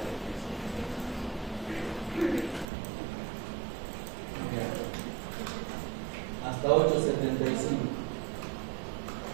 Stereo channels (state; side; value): drops out; left; at 2.7 s